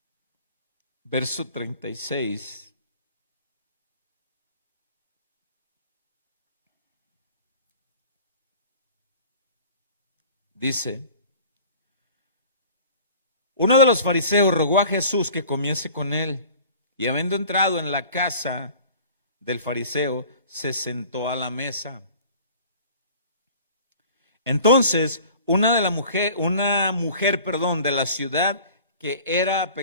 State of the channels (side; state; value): both; inverted; correlation -0.46